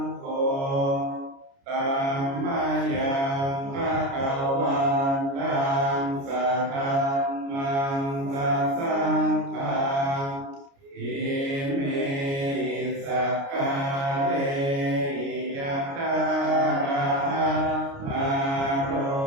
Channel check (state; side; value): late; left; 29 ms